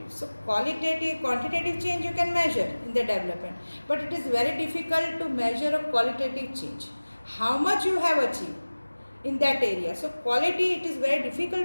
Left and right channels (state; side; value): inverted; both; correlation -1.00